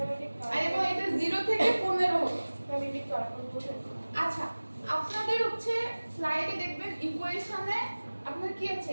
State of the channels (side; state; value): both; inverted; correlation -1.00